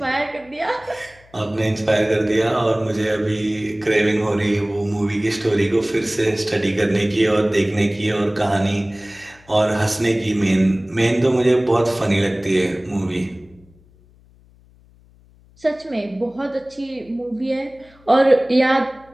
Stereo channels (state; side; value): noise; left; hum, 28 dB below the sound